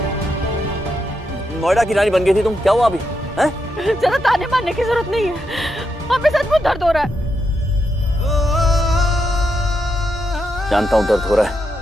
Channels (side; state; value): both; normal; correlation 0.83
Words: नोएडा की रानी बन गई थी तुम। क्या हुआ अभी? हैं? ज्यादा ताने मारने की जरूरत नहीं है, हमें सचमुच दर्द हो रहा है। जानता हूं दर्द हो रहा है,